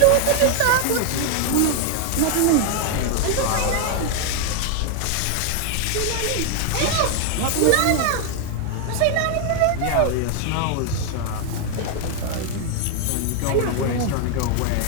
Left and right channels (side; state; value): both; different; correlation 0.00